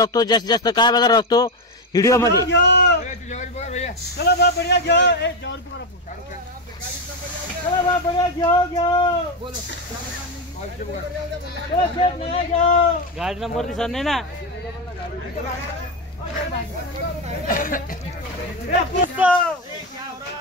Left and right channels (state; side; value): normal; both; correlation 0.10